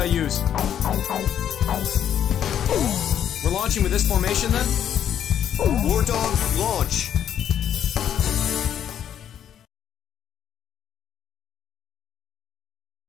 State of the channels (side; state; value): right; quieter; 9.6 dB